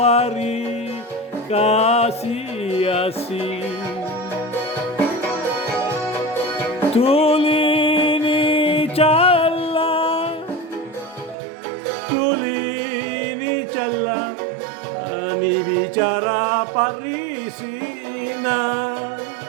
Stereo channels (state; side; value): drops out; left; at 11.4 s